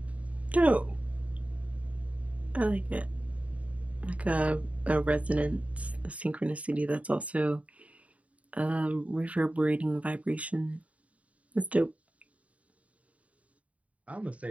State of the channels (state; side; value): late; left; 0.067 ms